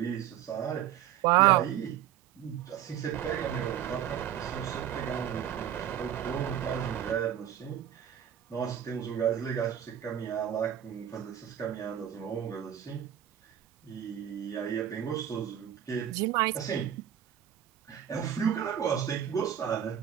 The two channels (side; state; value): left; quieter; 10.0 dB